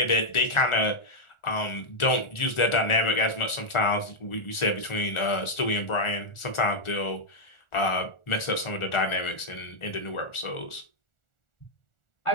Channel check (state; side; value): late; right; 1.4 ms